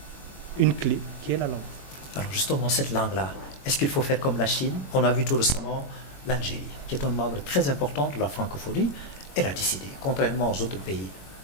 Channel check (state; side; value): late; right; 21 ms